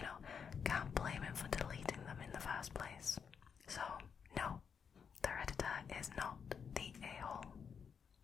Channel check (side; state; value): right; quieter; 6.7 dB